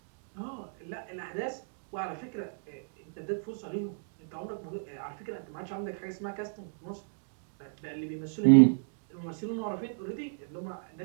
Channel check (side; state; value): left; silent; digital silence